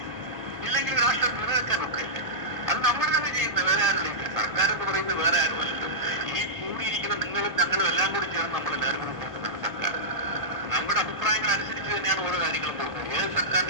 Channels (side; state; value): left; late; 1.7 ms